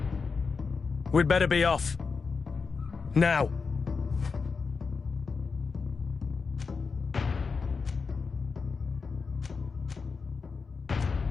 We'd better be off. Now.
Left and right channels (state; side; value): quieter; right; 4.9 dB